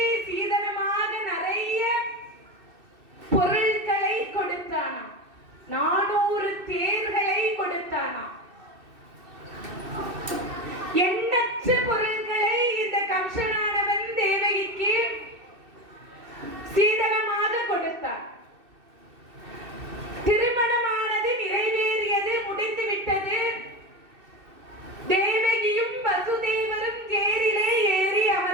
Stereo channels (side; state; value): left; late; 2.6 ms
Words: சீதனமாக நிறைய பொருட்களை கொடுத்தானாம். 400 தேர்களை கொடுத்தானாம். எண்ணற்ற பொருட்களை இந்த கம்சனானவன் தேவகிக்கு சீதனமாக கொடுத்தான். திருமணமானது நிறைவேறியது, முடிந்துவிட்டது. தேவகியும் வசுதேவரும் தேரிலே ஏறி